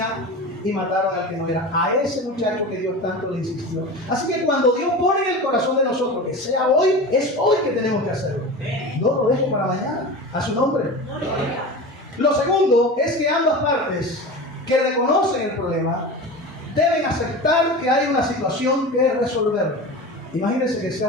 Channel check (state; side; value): normal; both; correlation 0.30